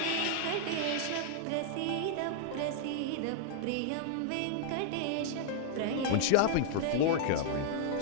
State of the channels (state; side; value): different; both; correlation -0.01